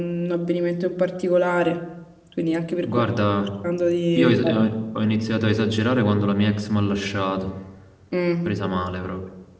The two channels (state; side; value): identical; both; correlation 1.00